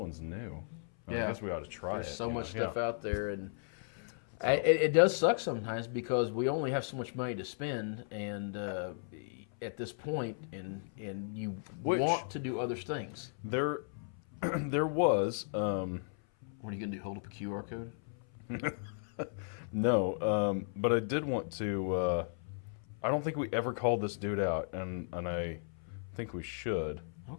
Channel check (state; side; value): silent; right; 54 dB below the other